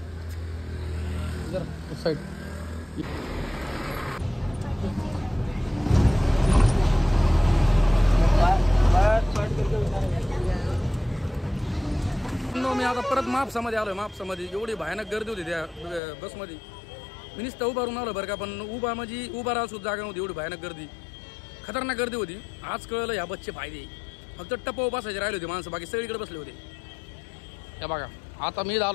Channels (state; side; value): drops out; right; at 16.0 s